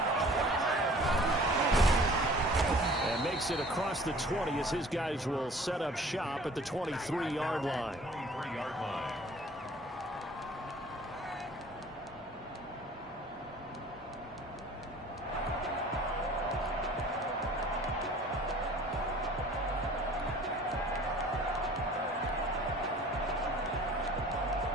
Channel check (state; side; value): normal; both; correlation 0.49